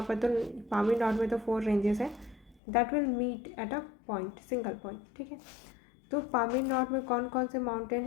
पर तो पामीर नॉट में तो 4 रेंजेस है, that will meet at a point, single point. ठीक है, तो पामीर नॉट में कौन कौन से माउंटेन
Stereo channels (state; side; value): drops out; right; at 2.6 s